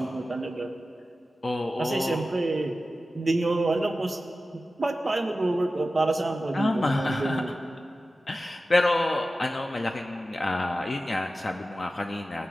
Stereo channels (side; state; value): both; normal; correlation 0.94